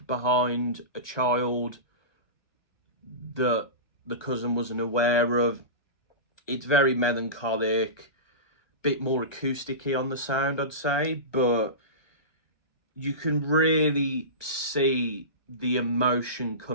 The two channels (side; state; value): right; late; 1.2 ms